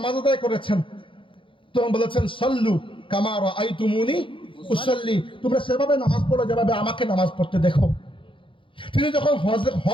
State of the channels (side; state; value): right; late; 0.25 ms